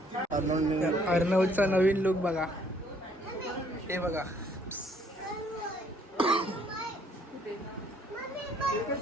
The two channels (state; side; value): normal; both; correlation 0.64